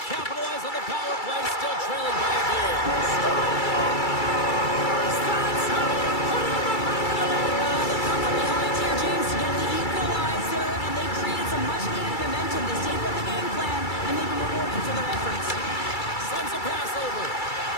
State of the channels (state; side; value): late; right; 2.3 ms